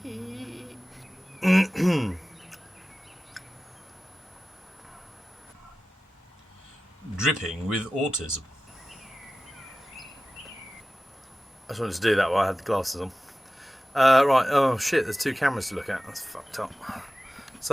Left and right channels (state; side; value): normal; both; correlation 0.95